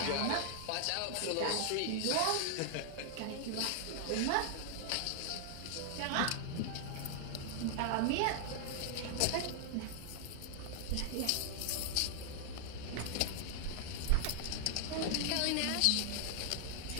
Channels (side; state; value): both; different; correlation 0.00